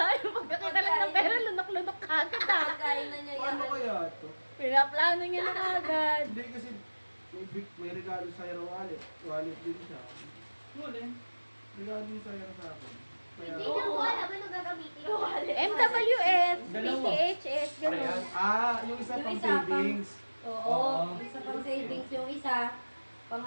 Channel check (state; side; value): inverted; both; correlation -1.00